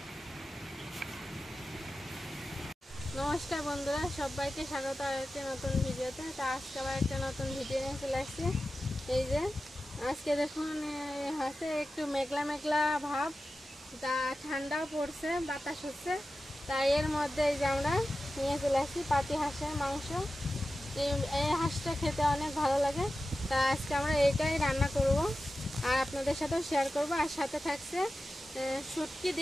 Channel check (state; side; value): normal; both; correlation 0.93